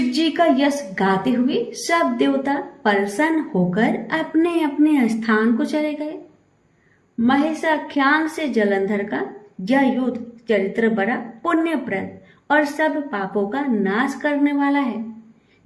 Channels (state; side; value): identical; both; correlation 1.00